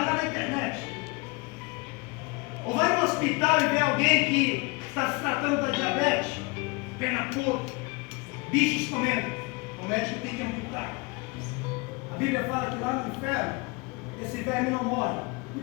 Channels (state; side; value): quieter; right; 27.2 dB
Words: lá na internet. Ou vai no hospital e vê alguém que está se tratando da diabetes, perna podre, bichos comendo. O médico tem que amputar. A Bíblia fala que lá no inferno, esse verme não morre. E